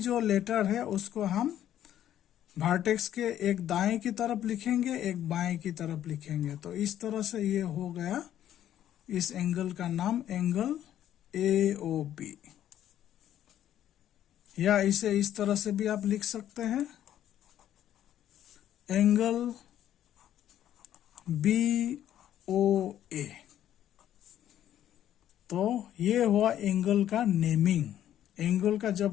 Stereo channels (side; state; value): right; quieter; 11.4 dB